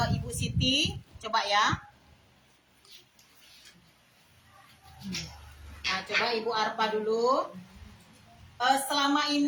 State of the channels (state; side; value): identical; both; correlation 1.00